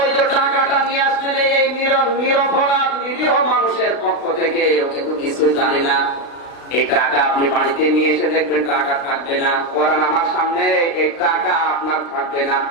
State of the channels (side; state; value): right; late; 36 ms